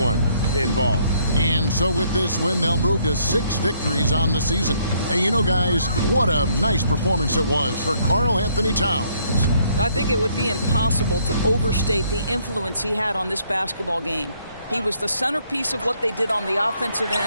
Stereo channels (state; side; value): inverted; both; correlation -0.68